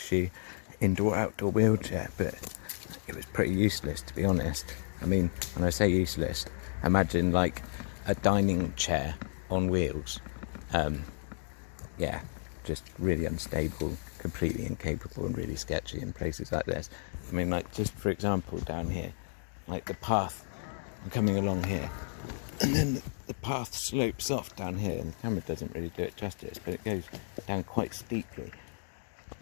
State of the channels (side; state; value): right; silent; digital silence